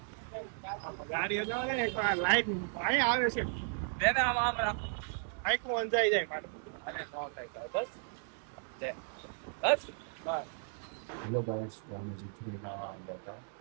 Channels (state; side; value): silent; left; 54 dB below the other